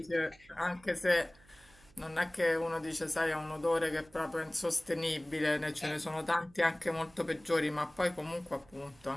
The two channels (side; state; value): right; noise; hum, 27 dB below the sound